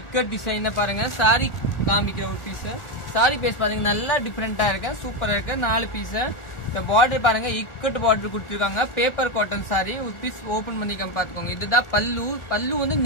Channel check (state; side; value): late; right; 1.4 ms